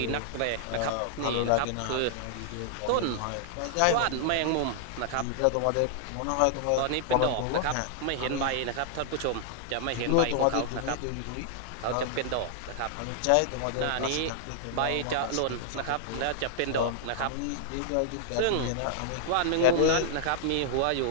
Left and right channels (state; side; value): different; both; correlation -0.01